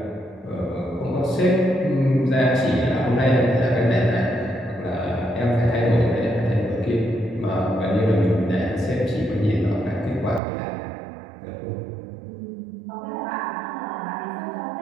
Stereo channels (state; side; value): drops out; left; at 10.4 s